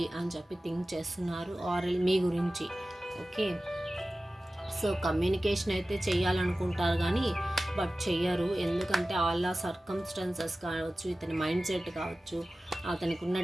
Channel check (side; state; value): both; normal; correlation 0.96